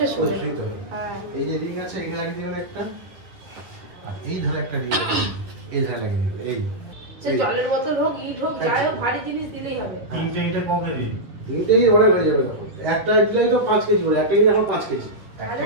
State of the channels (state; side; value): late; left; 10 ms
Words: ওই শুয়ে। শুইতে হবে। হ্যাঁ। এই যে রিং আছে, এখানে লাগিয়ে দিবেন একটা, আর এই ধারে একটা রিং আছে, এই ধারে লাগিয়ে দিবেন। এই সে জলের বোতল হোক, ইট হোক, যাই হোক, ভারী জিনিস দিলেই হবে। তিনটে ইটে ক কেজি? তিনটেই ওয়েট হয়ে যাবে তখন। একটা দিলেই তো 5 কেজি বলে, একটা দিলে এখন 5 কেজি। একটা